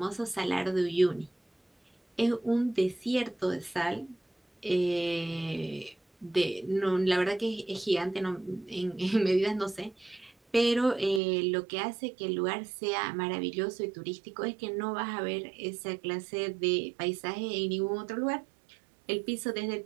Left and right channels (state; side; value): drops out; left; at 11.2 s